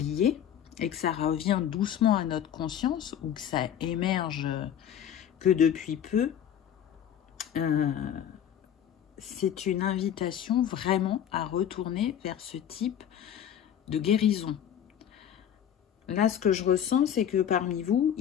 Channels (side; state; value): right; quieter; 9.6 dB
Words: et que ça revient doucement à notre conscience ou que ça émerge que depuis peu, c'est une invitation vraiment à retourner vers ce type de guérison. Là, ce que je ressens, c'est que parmi vous,